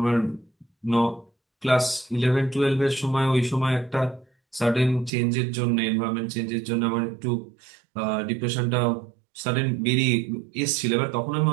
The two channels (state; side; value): drops out; left; at 5.1 s